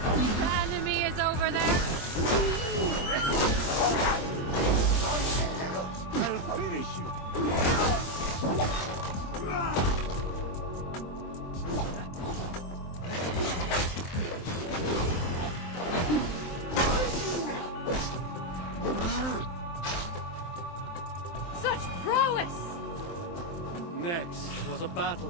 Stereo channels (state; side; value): late; right; 23 ms